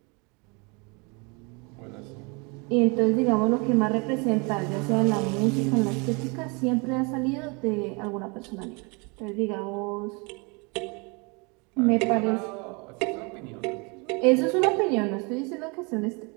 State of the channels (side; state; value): left; quieter; 30.5 dB